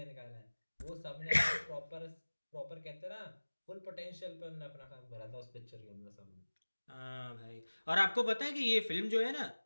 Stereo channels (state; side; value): inverted; both; correlation -1.00